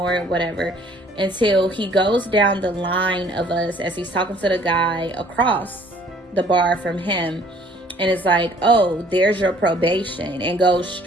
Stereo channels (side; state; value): both; normal; correlation 0.57